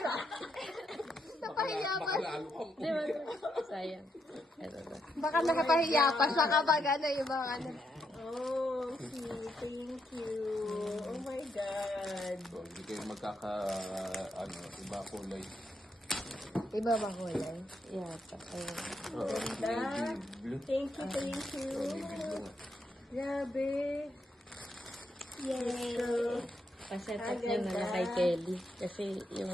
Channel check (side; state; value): both; normal; correlation 0.80